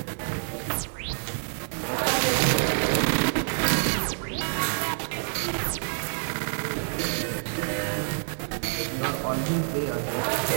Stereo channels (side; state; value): left; silent; digital silence